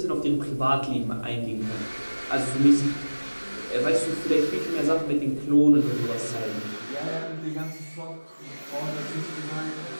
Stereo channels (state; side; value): inverted; both; correlation -1.00